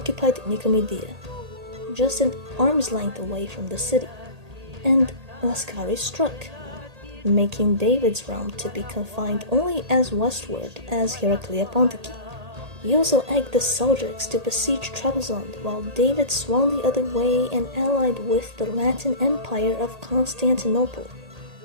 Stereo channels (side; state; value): left; late; 1.8 ms